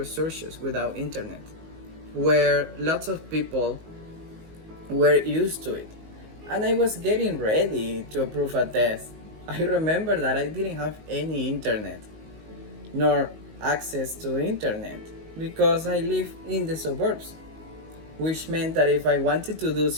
without internet, where lots of people were used to it. And I was getting ready to approve a test. I remember that I didn't have any internet, nor access to internet, because I live in the suburbs, which meant that if I wanted to do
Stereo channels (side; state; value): left; late; 19 ms